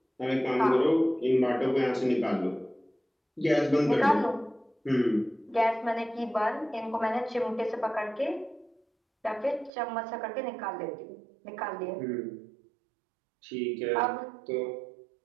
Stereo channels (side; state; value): left; drops out; at 9.7 s